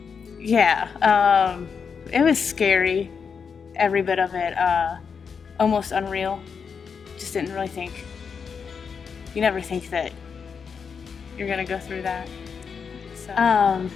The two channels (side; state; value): right; quieter; 6.2 dB